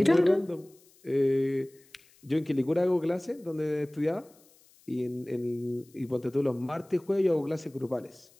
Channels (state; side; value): noise; left; hiss, 29 dB below the sound